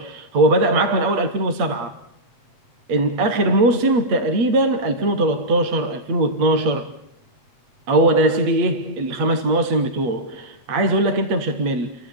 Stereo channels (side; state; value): left; late; 8.4 ms